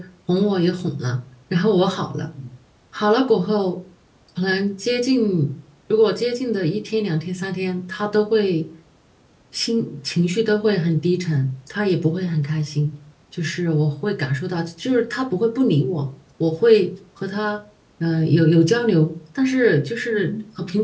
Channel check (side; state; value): both; identical; correlation 1.00